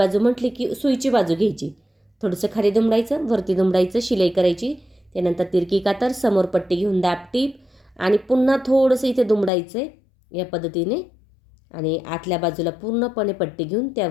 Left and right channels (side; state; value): right; drops out; at 9.5 s